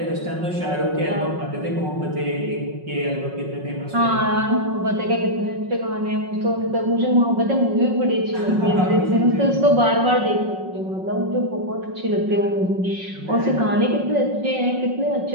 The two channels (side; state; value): left; late; 5.4 ms